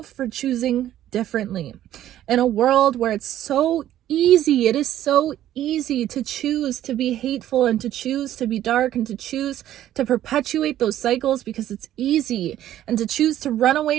for choosing differently. In a world where it's so easy, it is so easy to choose to be hateful and to choose to be dark and to choose to perpetuate those cycles because it's easy, and to choose to run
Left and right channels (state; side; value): quieter; left; 12.4 dB